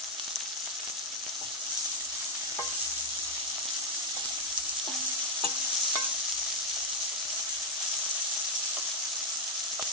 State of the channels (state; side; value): normal; both; correlation 0.03